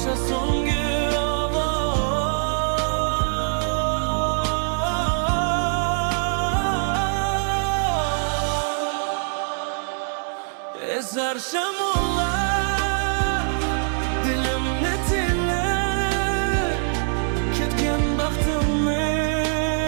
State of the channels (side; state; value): left; silent; 63 dB below the other